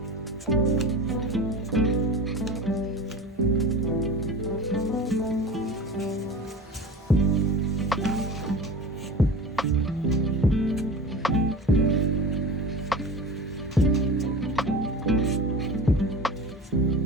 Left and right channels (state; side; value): normal; both; correlation 0.34